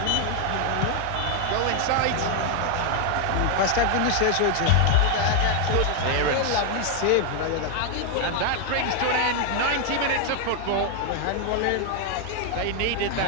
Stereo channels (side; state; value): both; different; correlation 0.01